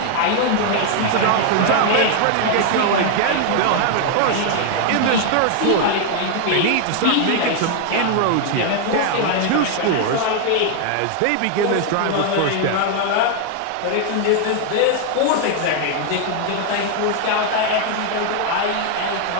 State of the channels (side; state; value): both; different; correlation 0.00